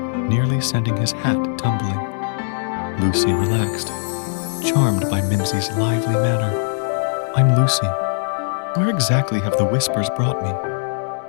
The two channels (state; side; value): silent; right; 64 dB below the other